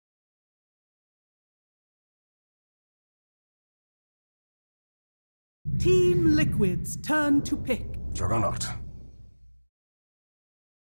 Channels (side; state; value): both; inverted; correlation -1.00